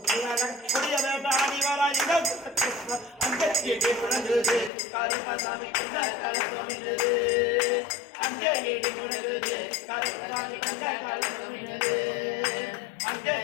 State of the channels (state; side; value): drops out; right; at 4.7 s